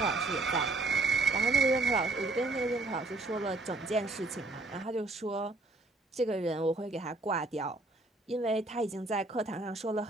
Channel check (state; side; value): quieter; left; 3.1 dB